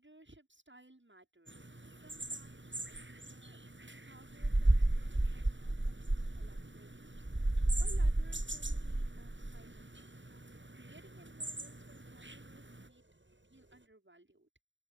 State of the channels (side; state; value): left; late; 0.54 ms